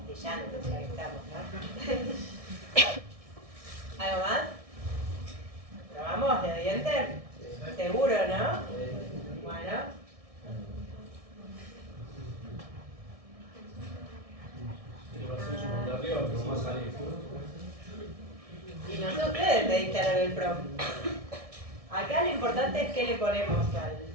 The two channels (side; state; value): left; late; 1.6 ms